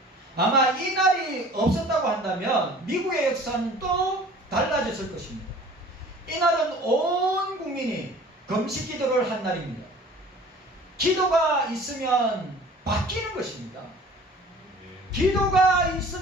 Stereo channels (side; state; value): both; normal; correlation 0.47